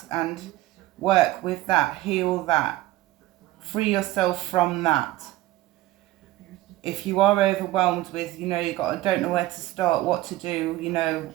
and work with that, heal that, free yourself from that. If you are overwhelmed with, you know, don't know where to start, what to do, you know,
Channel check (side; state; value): left; quieter; 16.7 dB